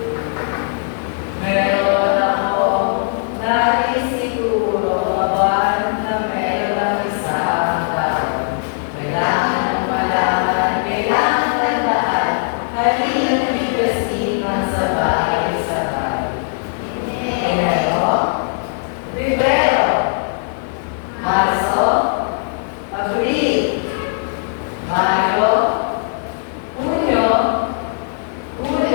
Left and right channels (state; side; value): silent; right; 66 dB below the other